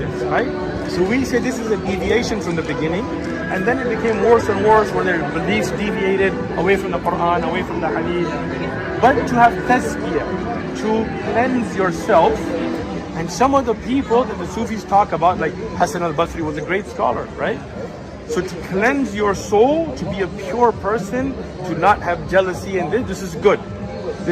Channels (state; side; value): identical; both; correlation 1.00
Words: right? So we say this is a deviation from the beginning, and then it became worse and worse, where their beliefs deviated away from the Quran, away from the Hadith. But to have tazkiyah, to cleanse yourself, and some of the people that the Sufis talk about, like Hassan al-Basri was a great scholar, right? So to cleanse your soul, to be a pure person, to not have jealousy, and this is good.